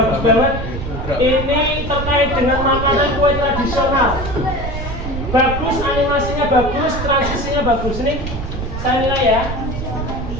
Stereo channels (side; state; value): right; noise; rumble, 5 dB below the sound